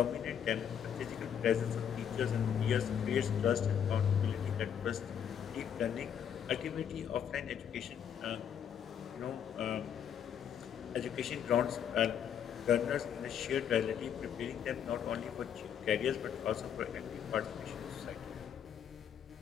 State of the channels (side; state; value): right; quieter; 8.6 dB